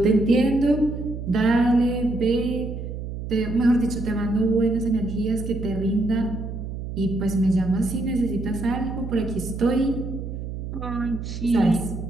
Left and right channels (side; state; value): right; noise; hum, 7 dB below the sound